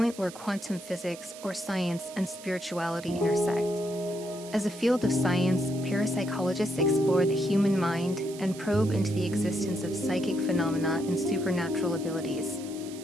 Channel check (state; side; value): noise; right; hiss, 16 dB below the sound